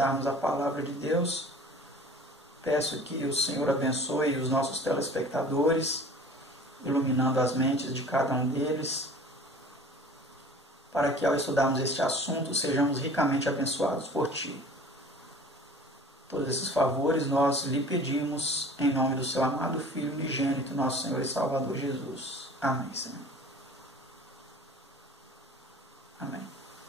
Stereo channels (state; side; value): normal; both; correlation 0.45